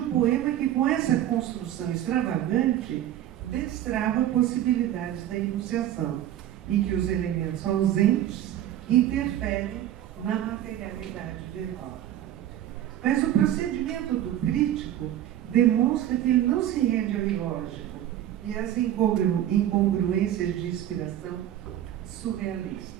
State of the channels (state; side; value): quieter; left; 11.9 dB